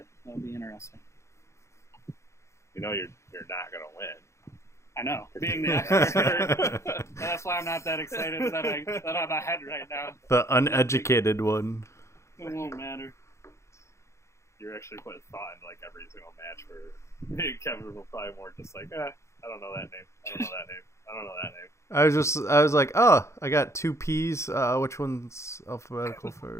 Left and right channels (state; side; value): late; right; 0.14 ms